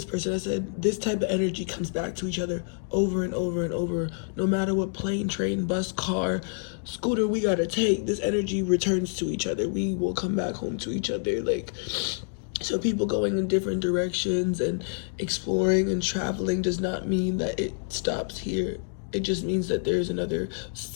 person, I said, this type of energy comes back to each other over and over and over. No matter what plane, train, bus, car, scooter we gotta take, this energy returns to each other. We will come back home to each other. Like, so people going in different directions and exploring and traveling does not mean that it stops here. It just means that there's another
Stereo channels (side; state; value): right; silent; 60 dB below the other